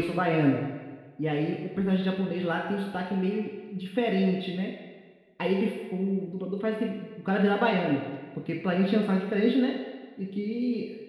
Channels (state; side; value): identical; both; correlation 1.00